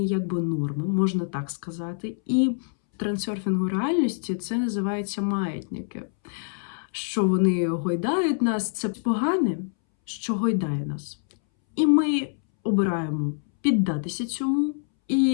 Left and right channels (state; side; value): silent; right; 61 dB below the other